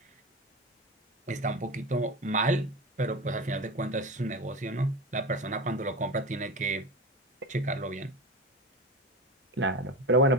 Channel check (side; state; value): both; normal; correlation 0.26